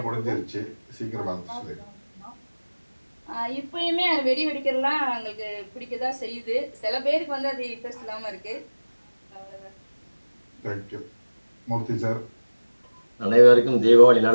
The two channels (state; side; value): inverted; both; correlation -1.00